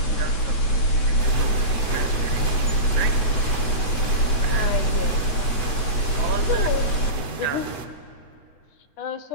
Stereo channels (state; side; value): late; right; 8.1 ms